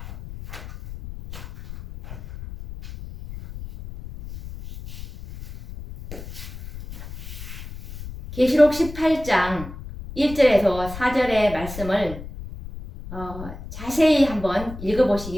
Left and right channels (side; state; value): left; noise; rumble, 12 dB below the sound